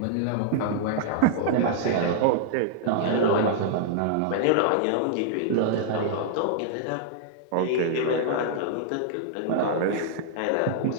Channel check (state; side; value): different; both; correlation -0.01